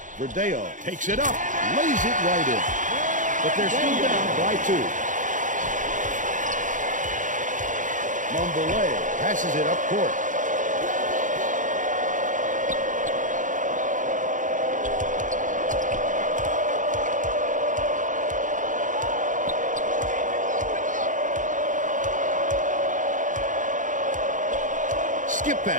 Verdeo takes it up, lays it right in. But they're still down by 2. Mondelez passes it up court. Skip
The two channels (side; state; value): left; late; 0.37 ms